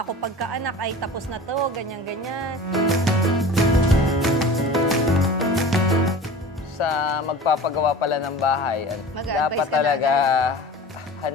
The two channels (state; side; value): normal; both; correlation 0.38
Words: ako pagkaanak ay tapos na to, ganyan-ganyan. Sa magpapagawa pala ng bahay, dapat talaga